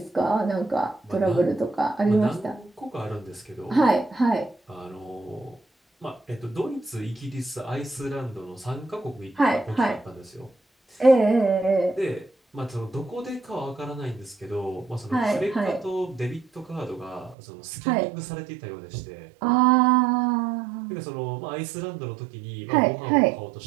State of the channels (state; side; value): drops out; left; at 17.4 s